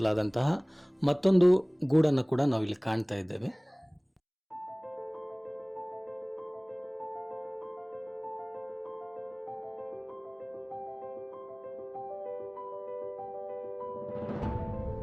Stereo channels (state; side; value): identical; both; correlation 1.00